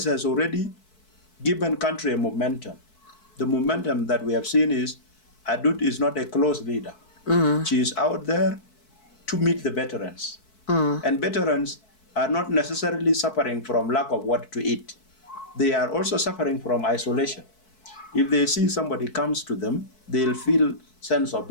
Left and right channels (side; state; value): right; late; 4.6 ms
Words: has already given country a momentum. The momentum that we have seen is Adut is not a close leader. She is out there to meet the veterans. And veterans are not necessarily suffering from lack of what to eat. They are also suffering from isolation. If they see somebody comes to them, they'll feel sense of